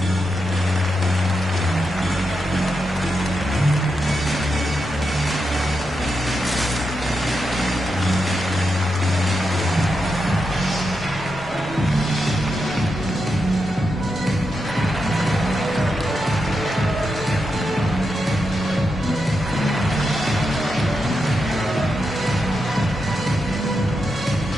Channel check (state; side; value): noise; left; rumble, 21 dB below the sound